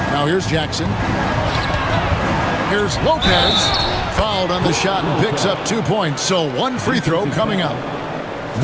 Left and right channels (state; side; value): identical; both; correlation 1.00